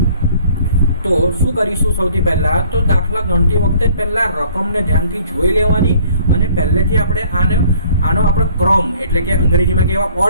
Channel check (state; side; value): inverted; both; correlation -0.56